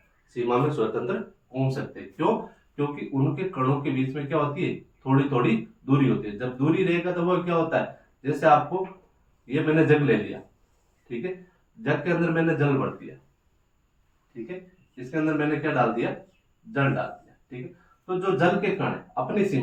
सीमा में स्वतंत्र घूम सकते हैं। क्यों? क्योंकि उनके कणों के बीच में क्या होती है, थोड़ी थोड़ी दूरी होती है। जब दूरी रहेगा तो वो क्या होता है, जैसे आपको ये मैंने जग ले लिया, ठीक है, जग के अंदर मैंने जल भर दिया, ठीक है, इसके अंदर मैंने क्या डाल दिया, जल डाल दिया। ठीक है, तो जो जल के कण है अपनी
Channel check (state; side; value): identical; both; correlation 1.00